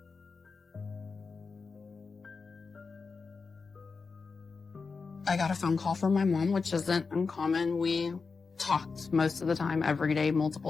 I got a phone call from my mom, which isn't uncommon. We talked most of the time, every day,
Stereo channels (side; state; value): right; quieter; 4.7 dB